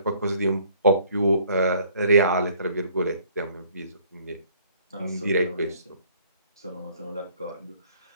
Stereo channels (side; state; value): both; inverted; correlation -0.59